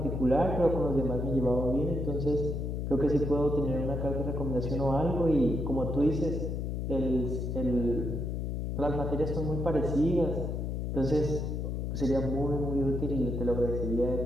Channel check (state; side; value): noise; left; hum, 2 dB below the sound